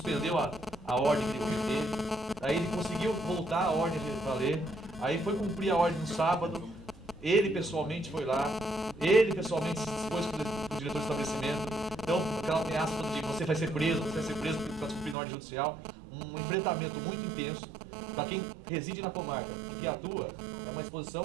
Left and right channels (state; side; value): drops out; left; at 15.2 s